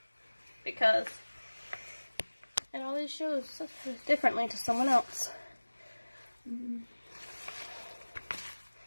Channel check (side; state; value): both; inverted; correlation -1.00